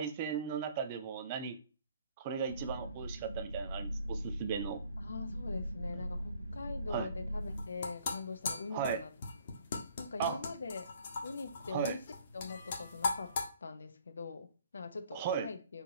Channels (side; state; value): both; inverted; correlation -0.60